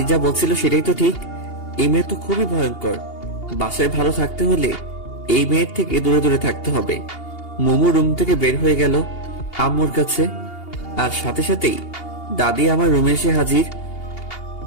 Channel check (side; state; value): right; late; 2.8 ms